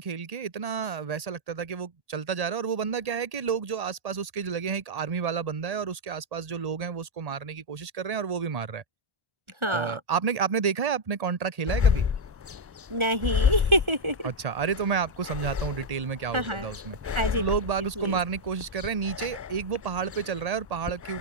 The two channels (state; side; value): late; left; 1.8 ms